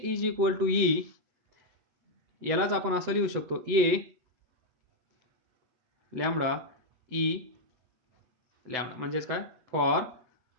is equal to E, यालाच आपण असं लिहू शकतो ए लॅम्बडा ई लॅम्बडा म्हणजेच काय, फॉर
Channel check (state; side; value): late; left; 7.9 ms